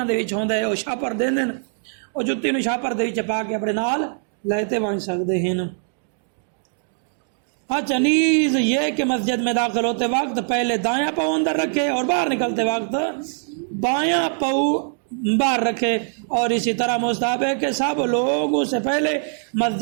دے وچ ہوندا ہے، وہ شاپر دے دین، وہ جُتی نو شاپر دے وچ پا کے اپنے نال لیتے بن سکتے ہیں۔ اچھا نیز یہ کہ مسجد میں داخل ہوتے وقت پہلے دایاں پاؤں اندر رکھے اور باہر نکلتے وقت بایاں پاؤں باہر رکھے، اور اسی طرح مستحب ہے کہ سب لوگ اس سے پہلے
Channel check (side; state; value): left; silent; digital silence